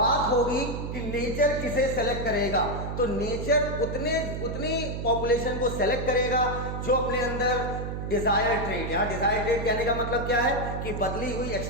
होगी कि नेचर किसे सेलेक्ट करेगा, तो नेचर उतनी पॉपुलेशन को सेलेक्ट करेगा जो अपने अंदर डिजायर ट्रेट, यहाँ डिजायर ट्रेट कहने का मतलब क्या है कि बदली हुई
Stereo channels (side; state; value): right; noise; hum, 4 dB below the sound